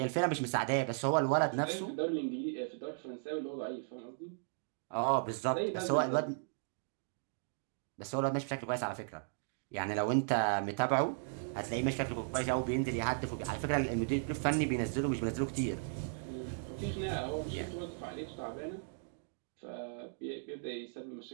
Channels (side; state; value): left; silent; digital silence